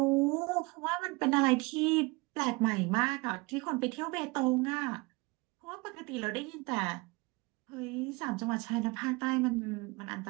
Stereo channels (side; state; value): left; quieter; 25.7 dB